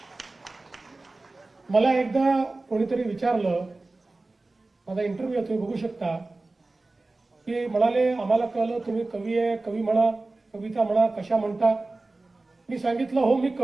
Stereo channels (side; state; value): left; quieter; 3.2 dB